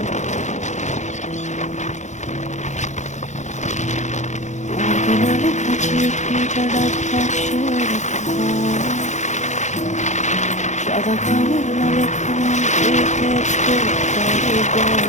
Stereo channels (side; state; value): right; late; 0.34 ms